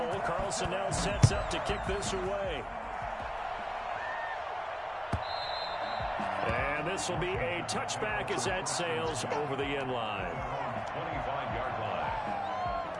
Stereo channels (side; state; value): both; identical; correlation 1.00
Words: Carlson now sets up to kick this away. And this will be a touchback as that sails over the end line. 25-yard line.